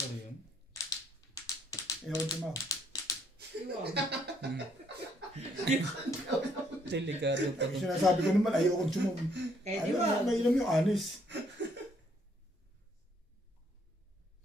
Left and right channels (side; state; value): both; normal; correlation 0.68